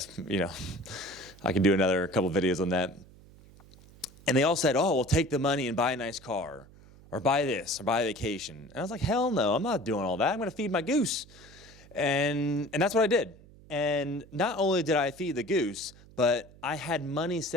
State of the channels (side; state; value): right; noise; hum, 23 dB below the sound